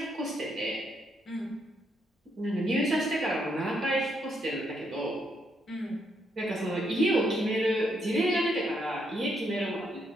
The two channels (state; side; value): normal; both; correlation 0.76